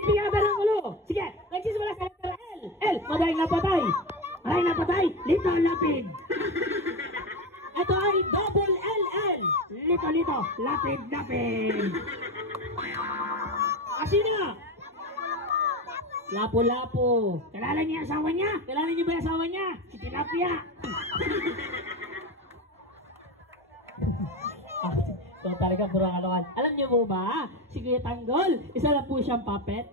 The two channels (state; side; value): normal; both; correlation 0.20